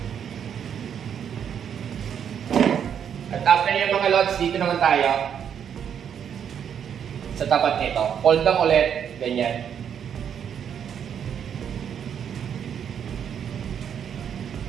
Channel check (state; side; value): quieter; left; 8.3 dB